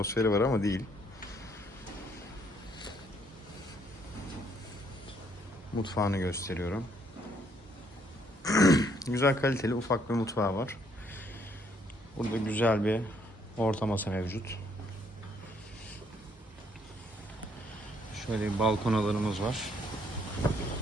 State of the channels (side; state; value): both; normal; correlation 0.68